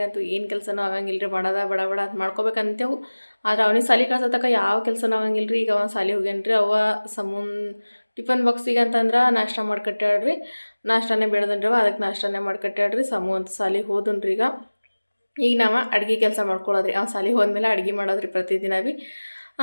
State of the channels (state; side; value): inverted; both; correlation -1.00